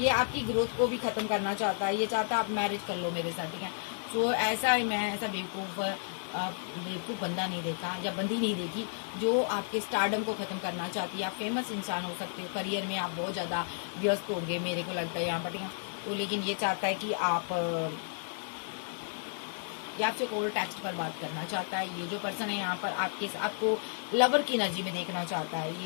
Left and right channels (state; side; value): silent; right; digital silence